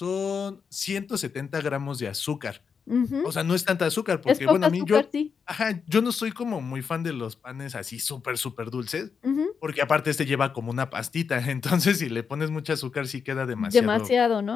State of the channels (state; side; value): quieter; right; 6.1 dB